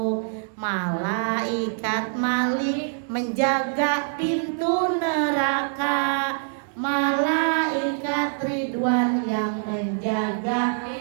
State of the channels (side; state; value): left; silent; digital silence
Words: Malaikat Malik menjaga pintu neraka, Malaikat Ridwan yang menjaga